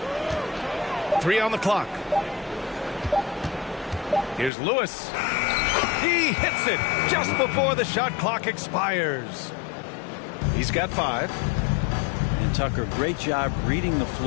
3 on the clock. Here's Lewis. He hits it just before the shot clock expires. He's got 5. And Tucker, great job reading the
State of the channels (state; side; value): drops out; right; at 4.5 s